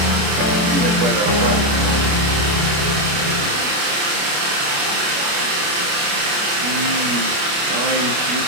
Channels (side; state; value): left; late; 28 ms